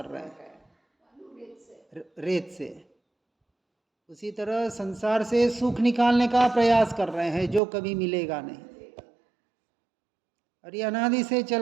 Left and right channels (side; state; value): left; drops out; at 7.6 s